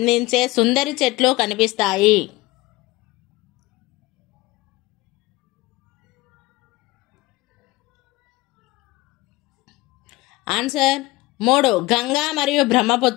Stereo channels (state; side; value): quieter; right; 20.4 dB